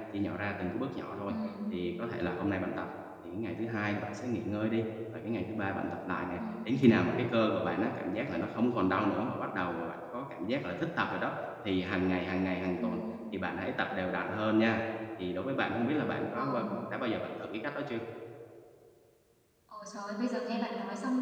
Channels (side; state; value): both; identical; correlation 1.00